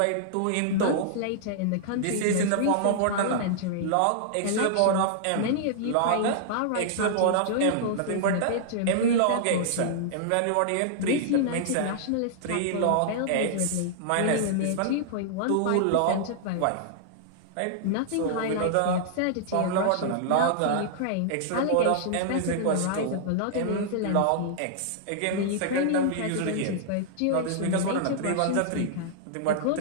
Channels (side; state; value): both; different; correlation -0.01